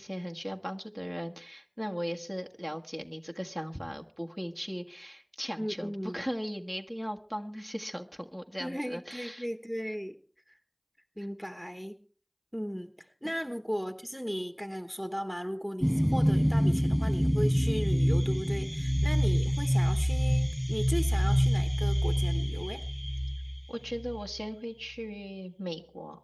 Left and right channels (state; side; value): identical; both; correlation 1.00